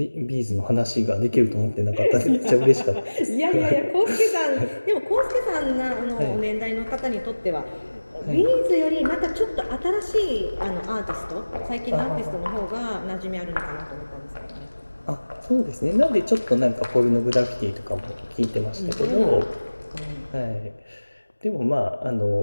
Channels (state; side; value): inverted; both; correlation -1.00